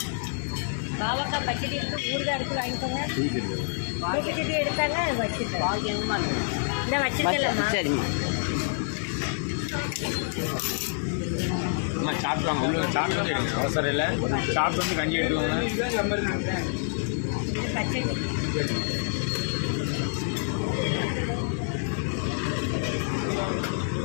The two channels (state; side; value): silent; right; digital silence